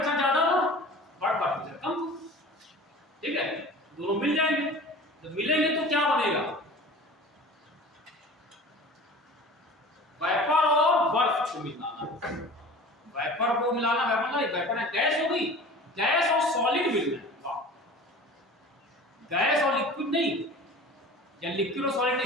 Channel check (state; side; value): normal; both; correlation 0.40